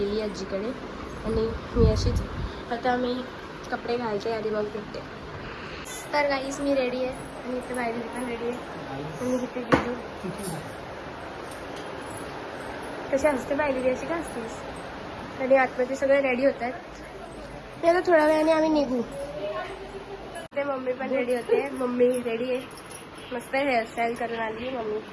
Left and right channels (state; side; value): identical; both; correlation 1.00